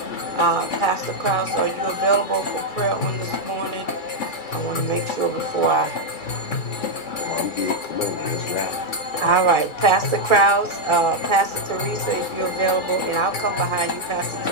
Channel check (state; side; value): late; right; 2.3 ms